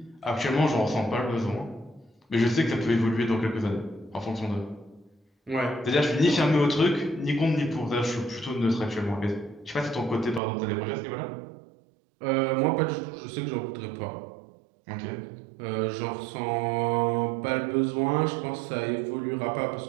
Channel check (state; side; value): drops out; left; at 10.4 s